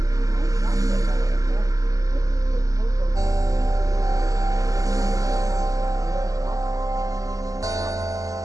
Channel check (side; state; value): left; late; 0.17 ms